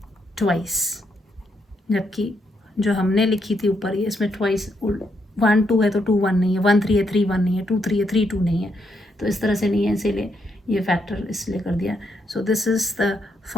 twice, जबकि जो हमने लिखी थी ऊपर ये इसमें ट्वाइस 1 2 है तो 2 1 नहीं है, 1 3 है 3 1 नहीं है, 2 3 है 3 2 नहीं है, तो इस तरह से नहीं है, इसीलिए ये फैक्टर इसलिए कर दिया। So this is the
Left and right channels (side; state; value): both; normal; correlation 0.77